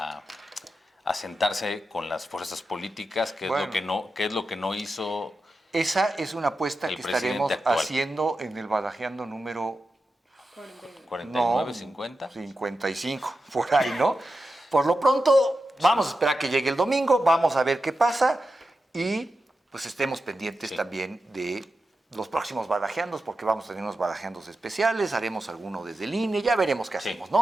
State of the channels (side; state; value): both; normal; correlation 0.90